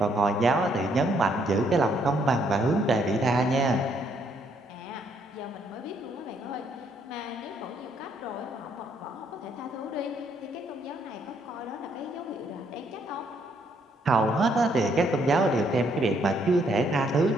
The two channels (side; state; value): both; normal; correlation 0.70